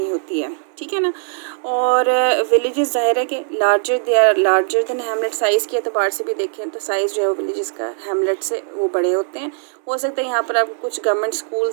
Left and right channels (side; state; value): left; silent; 66 dB below the other